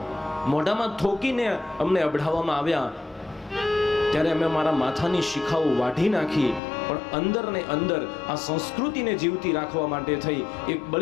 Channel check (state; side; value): drops out; right; at 6.6 s